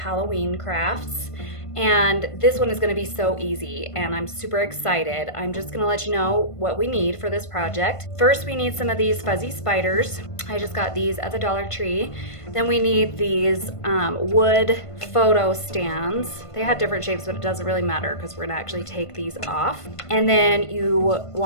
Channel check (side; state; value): right; late; 1.5 ms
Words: crafts. And this one is going to be so easy and I'm super excited. I'm just going to let you know what we need for this project. First, we need some of these fuzzy spiders. I just got these at the Dollar Tree. Then we need these wood photo stands. They had different shapes, but it doesn't really matter because we're gonna actually take these off. And then you